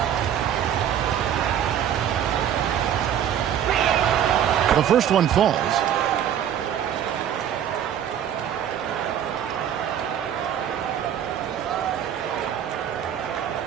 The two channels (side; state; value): left; quieter; 9.7 dB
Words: The first one falls.